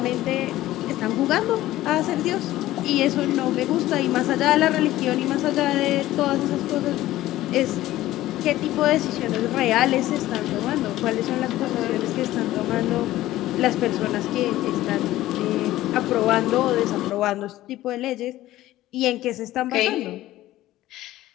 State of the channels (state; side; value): quieter; right; 15.4 dB